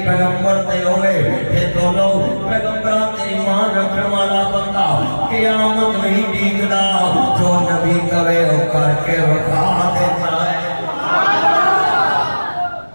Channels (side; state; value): both; inverted; correlation -1.00